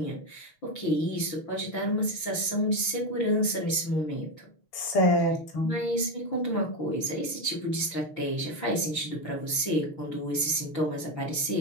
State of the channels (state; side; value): late; right; 6.5 ms